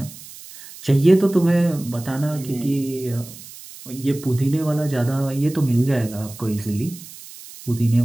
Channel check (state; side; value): noise; right; hiss, 17 dB below the sound